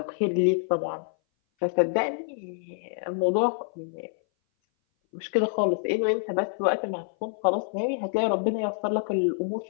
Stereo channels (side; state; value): right; silent; 58 dB below the other